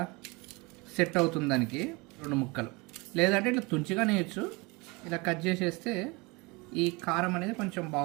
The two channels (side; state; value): left; quieter; 26.2 dB